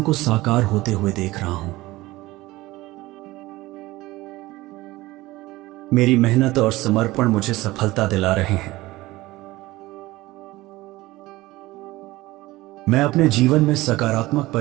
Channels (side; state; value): left; quieter; 18.9 dB